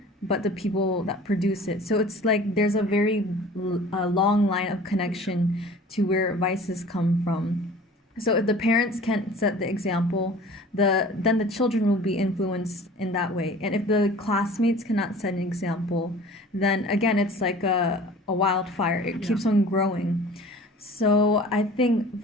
but the people that produce it. So it's like there's a very long line of connection to where vices come from. So if the parents can't set the example, then the children will be influenced in that way. And if the classmates cannot set an example, then again it's like a wildfire. It keeps on growing. So I think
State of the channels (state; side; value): normal; both; correlation 0.44